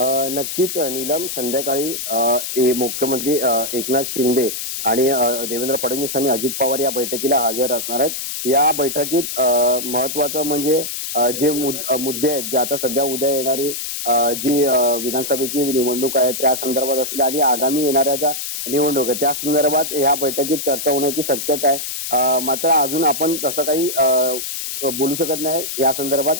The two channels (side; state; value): left; noise; hiss, 5 dB below the sound